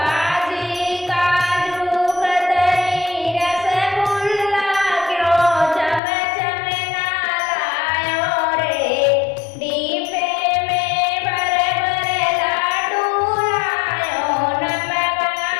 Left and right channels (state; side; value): drops out; right; at 6.0 s